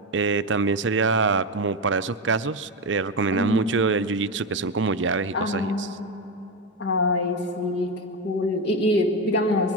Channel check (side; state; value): both; normal; correlation 0.13